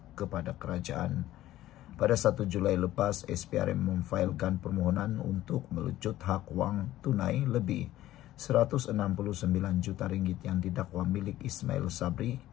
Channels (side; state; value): right; quieter; 14.5 dB